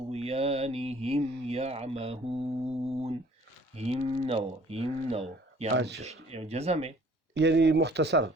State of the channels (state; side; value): normal; both; correlation 0.55